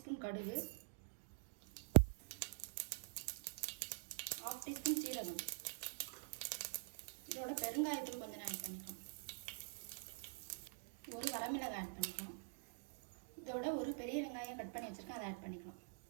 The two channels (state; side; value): silent; left; digital silence